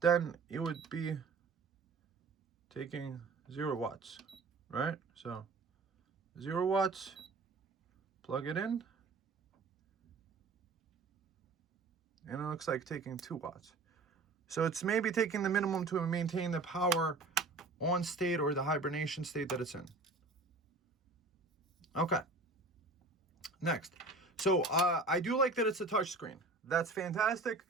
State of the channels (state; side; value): quieter; left; 3.6 dB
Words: then it would be taking 0 watts, right? So 0 watts, plug it in. And it looks like taking 2 watts. So it's maybe taking the minimum to maintain the power on state, or the hibernation state that it's in. Okay. Next. So I do like that it's a touch screen. That's fantastic,